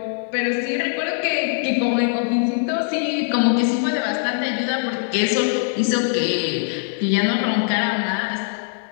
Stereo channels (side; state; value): right; silent; digital silence